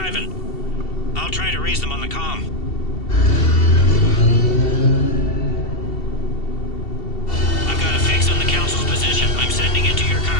I'll try to raise them on the comm. I've got a fix on the council's position. I'm sending it to your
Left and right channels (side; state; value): right; late; 2.7 ms